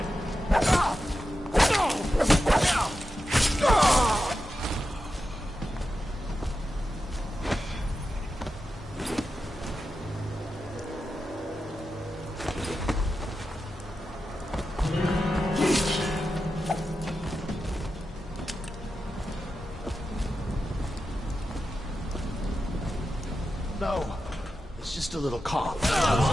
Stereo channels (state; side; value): normal; both; correlation 0.90